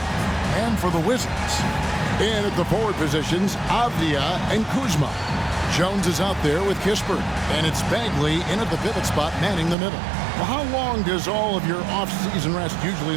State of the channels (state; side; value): drops out; left; at 9.8 s